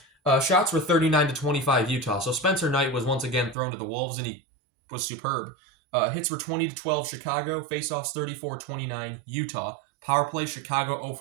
Shots were 39-25 Utah. So Spencer Knight was once again thrown to the Wolves, and he was superb. Hits were 20-12 Chicago. Faceoffs 34-29 Utah. Power play Chicago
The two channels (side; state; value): left; drops out; at 3.6 s